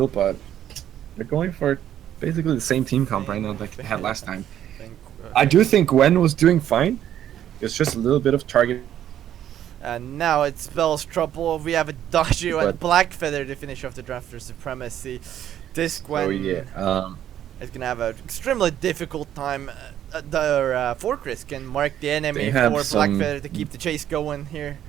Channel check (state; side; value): quieter; left; 11.0 dB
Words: But they're going for basically the same team comp right now like they had last time. I do think Gwen was doing fine. It's just a little bit of target. And now it spells trouble. We have Adagio and Blackfeather to finish off the draft for Supremacy. This Gwen is gonna have an extremely difficult time. Their Fortress can mark the enemy for Blackfeather to keep the chase going here.